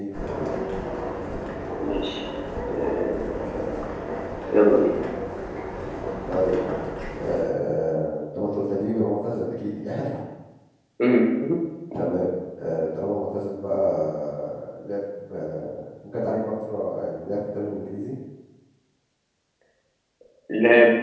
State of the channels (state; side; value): identical; both; correlation 1.00